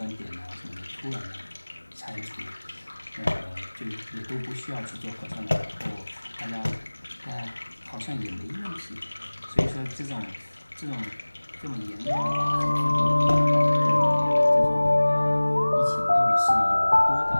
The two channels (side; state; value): both; inverted; correlation -1.00